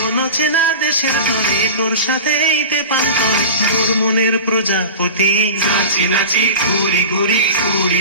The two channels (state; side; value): inverted; both; correlation -0.33